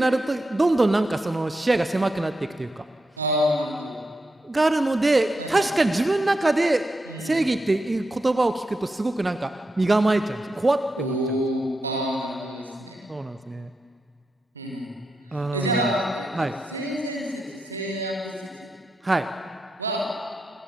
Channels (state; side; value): normal; both; correlation 0.86